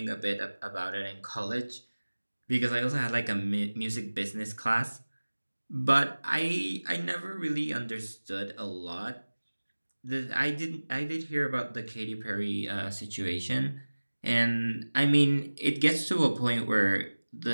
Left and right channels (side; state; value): both; inverted; correlation -1.00